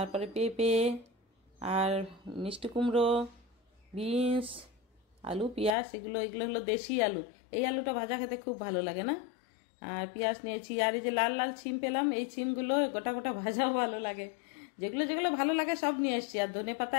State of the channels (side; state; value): right; drops out; at 5.8 s